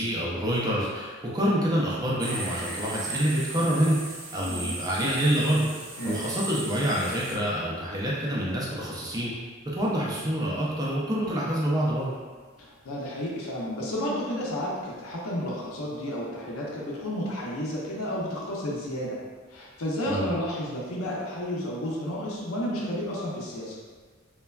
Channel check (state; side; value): normal; both; correlation 0.56